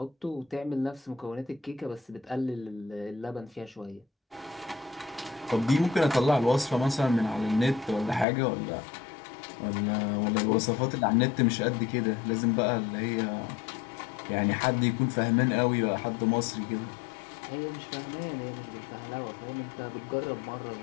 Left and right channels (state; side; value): drops out; right; at 8.2 s